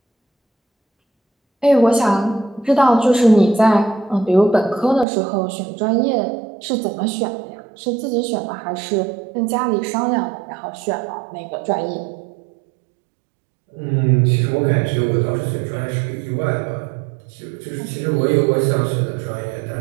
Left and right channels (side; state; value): left; drops out; at 5.1 s